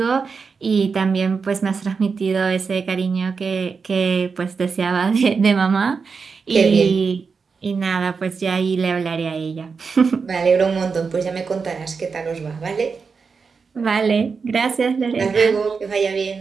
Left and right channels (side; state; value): left; quieter; 5.2 dB